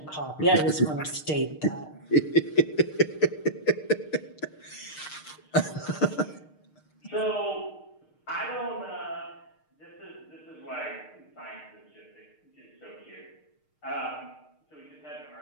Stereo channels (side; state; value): right; late; 6.5 ms